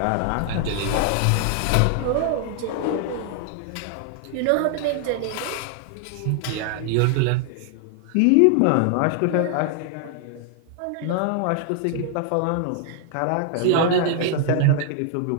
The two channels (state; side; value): different; both; correlation 0.00